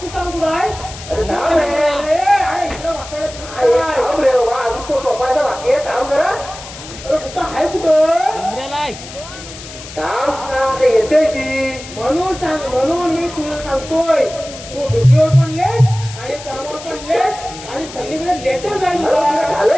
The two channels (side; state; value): left; noise; hiss, 14 dB below the sound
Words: सांग कुठं आहे अरे थांब रे अरे इकडं वासायला अरे काय? थांब रे बाबा अजून तो झोपायचा बाकी आहे थांब जरा अरे कुठं आहे कुठं उमऱ्याला आहे थांब ते येते ती म्हणून मी तुला सांगतोय तू ड्युटीवर पण लेट आणि कामावर पण लेट आणि सगळीकडे लेटर जाईल अरे तुला तुला.